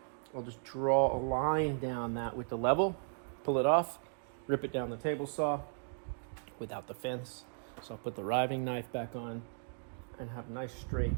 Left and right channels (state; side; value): silent; left; 54 dB below the other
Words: I'll just draw a line down that with the level, pull it off, rip it down the table saw without the fence. So I'll put the riving knife back on and have a nice straight